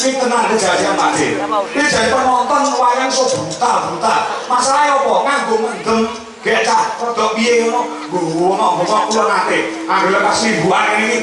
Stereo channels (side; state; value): both; identical; correlation 1.00